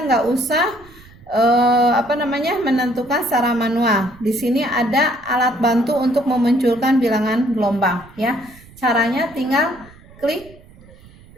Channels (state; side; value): noise; right; rumble, 23 dB below the sound